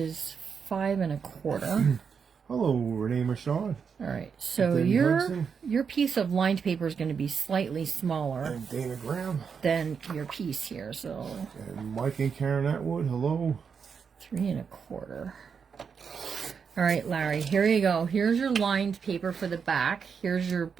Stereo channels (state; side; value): quieter; left; 6.3 dB